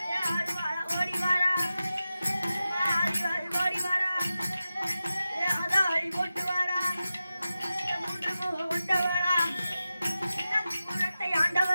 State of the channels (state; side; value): inverted; both; correlation -0.93